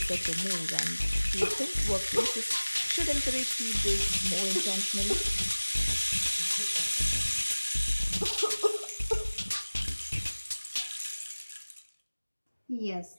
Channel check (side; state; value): both; inverted; correlation -1.00